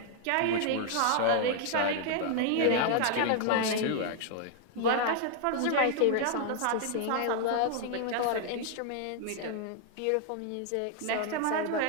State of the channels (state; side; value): different; both; correlation 0.00